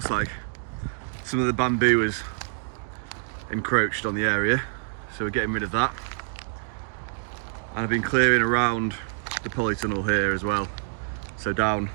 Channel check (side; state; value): left; silent; digital silence